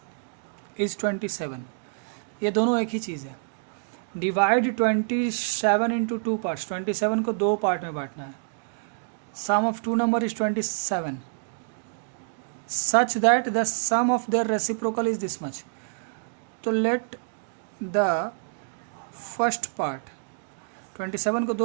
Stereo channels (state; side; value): silent; left; digital silence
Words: is 27, ये दोनों एक ही चीज़ है। डिवाइड 27 इंटू 2 पार्ट्स, 27 को 2 पार्ट में बांटना है। Sum of 2 number is 27 such that the sum of their reciprocal is this much. तो लेट द फर्स्ट पार्ट, 27 को